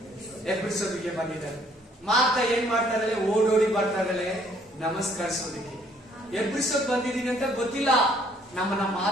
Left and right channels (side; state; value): both; normal; correlation 0.63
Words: ಎಬ್ಬರಿಸೋದಕ್ಕೆ ಬಂದಿದ್ದಾರೆ. ಮಾರ್ತಾ ಏನ್ ಮಾಡ್ತಾರೆ? ಓಡೋಡಿ ಬರ್ತಾರೆ ನಮಸ್ಕರಿಸೋದಕ್ಕೆ. ಎಬ್ಬರಿಸೋದ್ ಬಂದಿದ್ದೀನಿ ಅಂತ ಗೊತ್ತಿಲ್ಲ, ನಮ್ಮನ್ನ